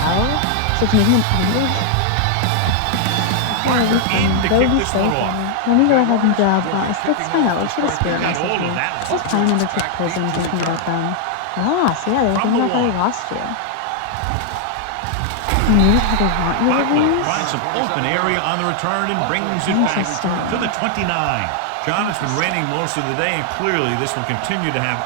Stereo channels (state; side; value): different; both; correlation 0.00